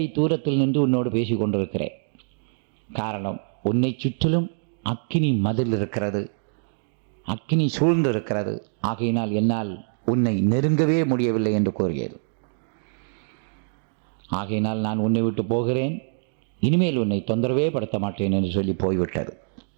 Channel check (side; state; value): left; silent; digital silence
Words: தூரத்தில் நின்று உன்னோடு பேசி கொண்டிருக்கிறேன். காரணம், உன்னை சுற்றிலும் அக்கினி மதில் இருக்கிறது, அக்கினி சூழ்ந்து இருக்கிறது. ஆகையினால் என்னால் உன்னை நெருங்கவே முடியவில்லை என்று கூறியது. ஆகையினால் நான் உன்னை விட்டு போகிறேன், இனிமேல் உன்னை தொந்தரவே படுத்த மாட்டேன் என்று சொல்லி போய்விட்டது.